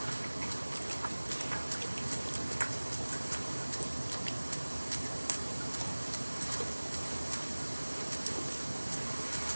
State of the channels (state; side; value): inverted; both; correlation -1.00